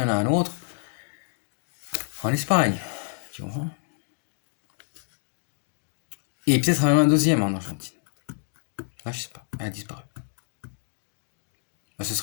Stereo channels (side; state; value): right; silent; digital silence